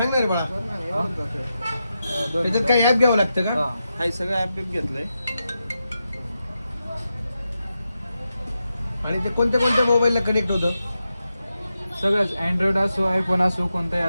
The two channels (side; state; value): both; inverted; correlation -0.88